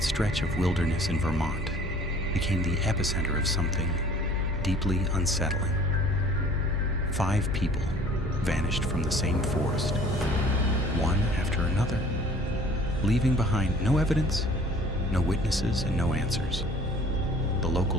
stretch of wilderness in Vermont, became the epicenter of something deeply unsettling. 5 people vanished from the same forest, one after another, leaving behind no evidence, no witnesses, and no answers. The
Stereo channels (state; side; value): normal; both; correlation 0.51